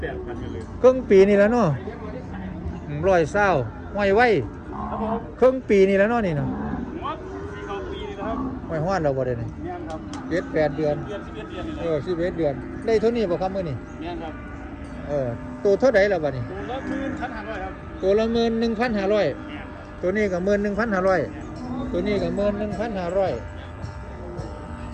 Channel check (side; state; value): both; identical; correlation 1.00